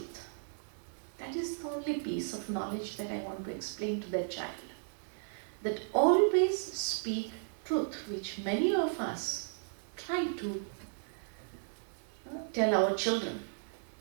That is the only piece of knowledge that I want to explain to that child. That always speak truth, which many of us try to tell our children.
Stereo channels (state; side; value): silent; left; digital silence